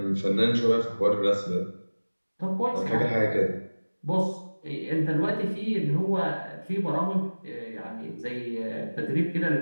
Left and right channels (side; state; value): both; inverted; correlation -1.00